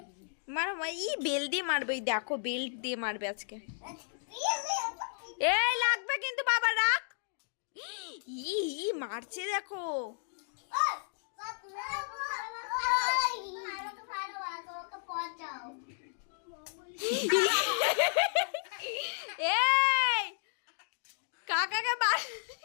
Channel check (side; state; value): right; silent; digital silence